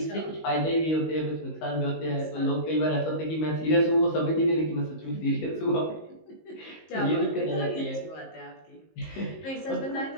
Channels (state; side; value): late; right; 19 ms